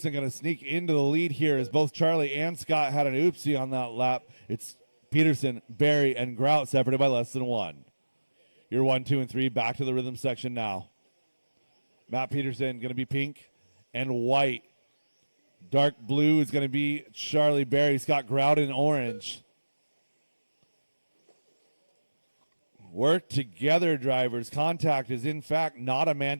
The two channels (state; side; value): inverted; both; correlation -1.00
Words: going to sneak into the lead here as both Charlie and Scott had an oopsie on that lap. It's Peterson, Berry, and Grout separated by less than 1. You're 1, 2, and 3 back to the rhythm section now. Matt Peterson going to be pink and white. Dark blue is going to be Charlie Berry. Scott Grout in orange. Work together, drivers. Contact is, in fact, not a